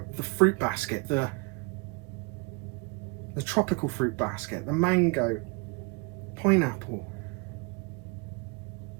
the fruit basket, the tropical fruit basket, the mango, pineapple,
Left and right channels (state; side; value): quieter; left; 30.0 dB